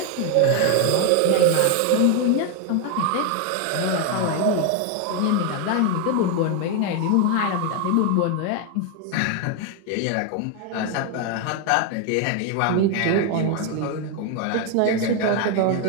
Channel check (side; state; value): both; different; correlation 0.01